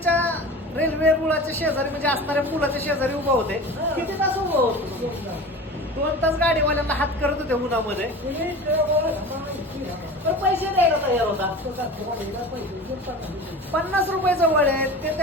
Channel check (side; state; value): both; normal; correlation 0.34